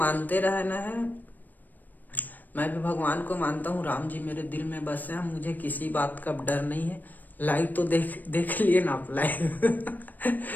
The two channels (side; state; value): right; late; 0.086 ms